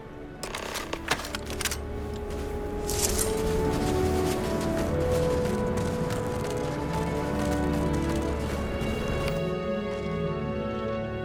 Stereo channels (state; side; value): identical; both; correlation 1.00